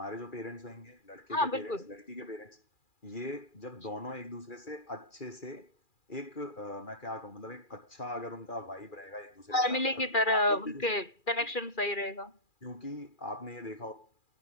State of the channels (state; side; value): late; right; 2.4 ms